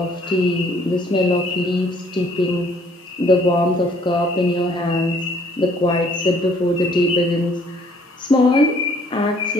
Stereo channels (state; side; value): normal; both; correlation 0.61